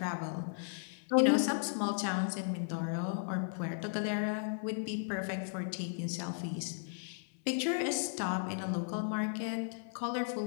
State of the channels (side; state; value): right; silent; 54 dB below the other